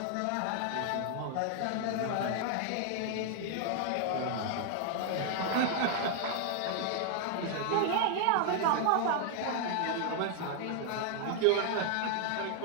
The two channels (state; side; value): different; both; correlation 0.00